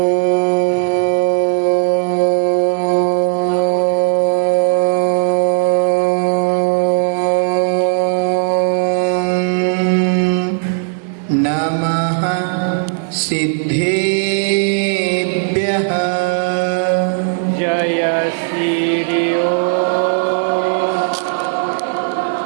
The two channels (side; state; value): left; silent; digital silence